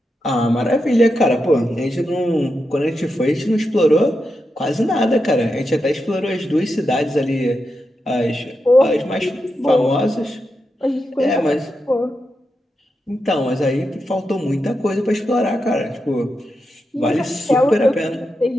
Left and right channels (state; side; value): normal; both; correlation 0.87